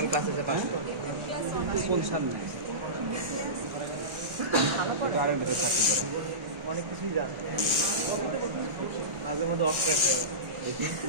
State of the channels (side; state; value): left; late; 1.4 ms